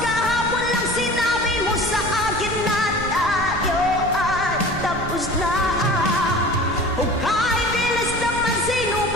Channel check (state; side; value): noise; right; rumble, 10 dB below the sound